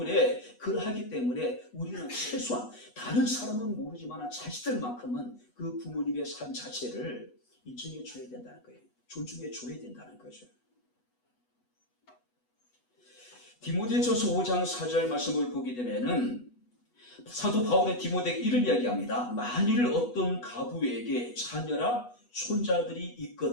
그러하기 때문에 우리는 최소한 다른 사람은 모르지만 자식들만큼은 그 부모님의 삶 자체를 인정해 줘야 된다는 거예요. 존중해 줘야 된다는 거죠. 디모데전서 5장 4절 말씀을 보게 되면은 사도 바울의 디모데에게 이런 이야기합니다. 만일 어떤 가부에게 자녀나 손자들이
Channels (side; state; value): right; late; 8.2 ms